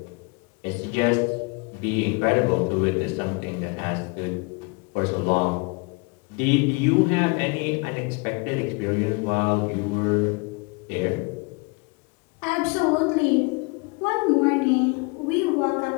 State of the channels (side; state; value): right; quieter; 29.7 dB